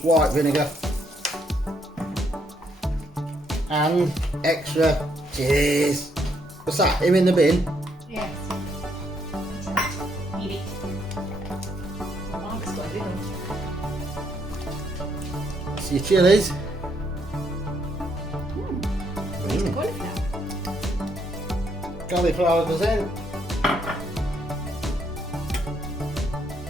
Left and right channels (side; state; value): both; normal; correlation 0.73